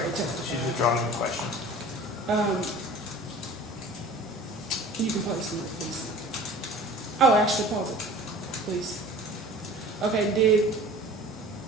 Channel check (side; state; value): both; normal; correlation 0.43